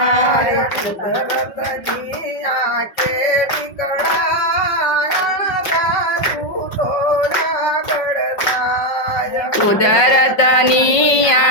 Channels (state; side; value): late; right; 5.4 ms